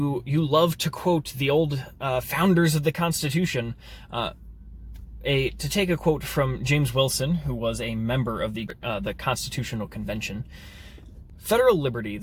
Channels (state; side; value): identical; both; correlation 1.00